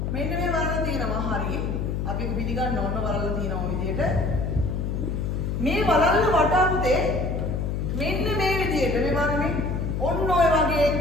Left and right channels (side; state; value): left; noise; hum, 1 dB below the sound